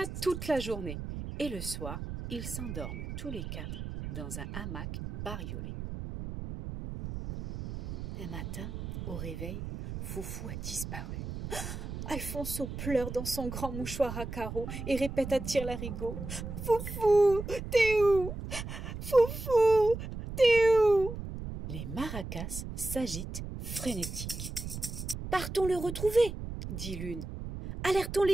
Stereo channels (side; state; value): right; noise; rumble, 7 dB below the sound